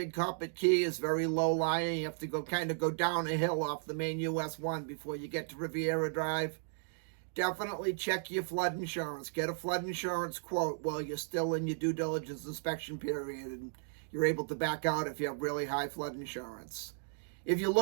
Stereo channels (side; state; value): left; silent; digital silence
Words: Coppet Key is very low lying. You have to go down a hill off the main US 1 before you get to Riviera Drive. Definitely check your flood insurance. Get a flood insurance quote while you're still in your due diligence inspection period, and you're able to back out if you have really high flood insurance. If you